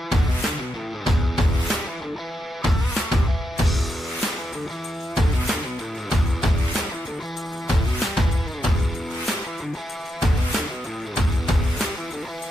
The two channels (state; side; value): normal; both; correlation 0.84